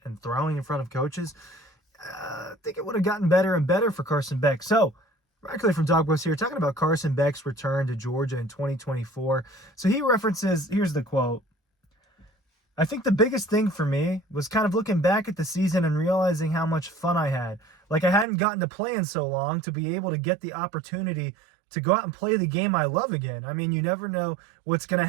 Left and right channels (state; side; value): drops out; left; at 18.2 s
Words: throwing in front of coaches? I think it would have gotten better and better for Carson Beck. So, directly from Dawg here, talking about Carson Beck's return to Georgia in 2024. So he references, here's the quote: "I think the biggest thing for me was kind of looking back at the season and realizing how much fun I had. Like, I hadn't gotten to play in so long, to be able to get the opportunity to go out and play the game I love again. I mean, you never know what's going to